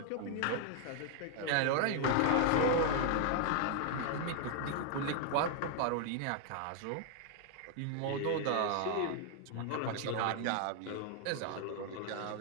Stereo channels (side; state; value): both; different; correlation 0.00